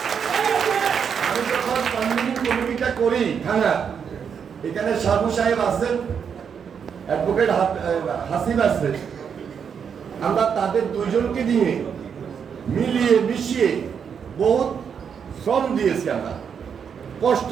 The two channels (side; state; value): left; quieter; 7.1 dB